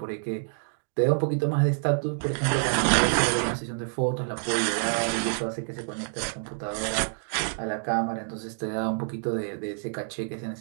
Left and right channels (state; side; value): silent; left; digital silence